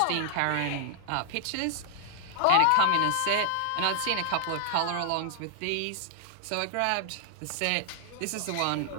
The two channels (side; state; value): both; different; correlation 0.00